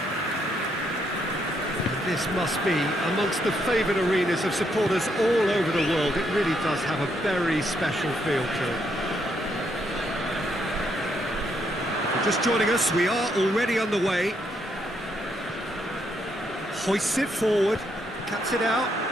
This must be amongst the favoured arenas of supporters all over the world. It really does have a very special feel to it. If you're just joining us, we are already on the way. Hoists it forward, cuts it out.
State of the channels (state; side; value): normal; both; correlation 0.75